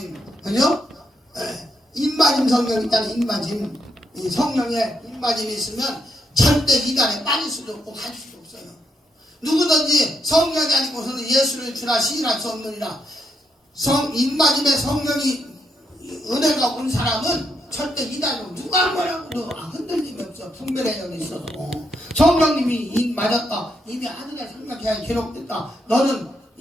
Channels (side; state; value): both; normal; correlation 0.80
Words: 그죠? 입맞음 성령 있잖아요. 입맞음 이 성령의 입맞음이 있으면 절대 이단에 빠질 수도 없고 갈 수도 없어요. 누구든지 성령이 아니고서는 예수를 주라 시인할 수 없느니라. 입맞음의 성령이 은혜가 온 사람은 절대 이단으로 누가 뭐라고 흔들림이 없어. 분별의 영이 있어서 성령님이 입 맞았다. 이미 아들의 생명계약이 기록됐다. 너는